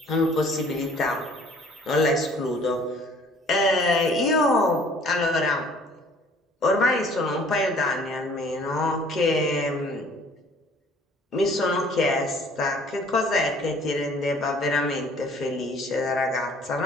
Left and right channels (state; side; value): normal; both; correlation 0.55